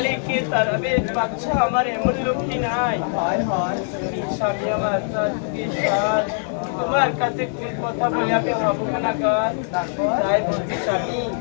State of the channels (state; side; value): silent; right; 64 dB below the other